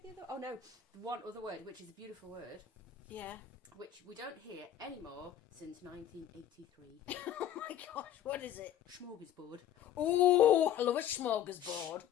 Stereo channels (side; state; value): right; quieter; 10.7 dB